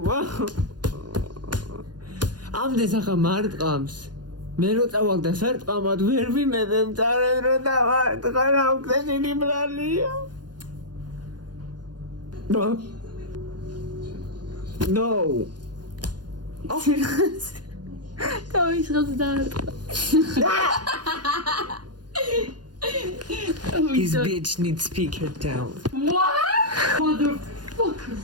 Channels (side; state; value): left; late; 0.70 ms